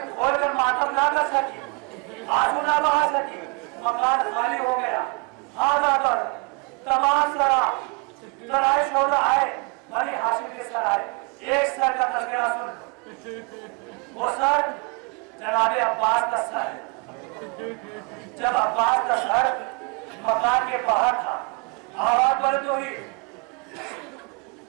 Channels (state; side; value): quieter; left; 30.9 dB